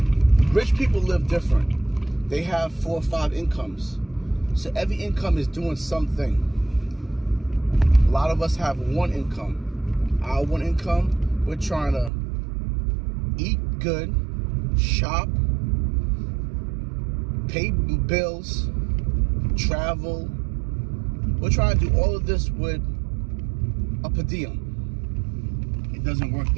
rich people live different. They have 4 or 5 incomes. So every income is doing something. A lot of us have one income. Our one income, we're trying to eat good, shop, pay bills, travel. We're trying to do all of this with a per diem. It doesn't work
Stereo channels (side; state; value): left; drops out; at 12.1 s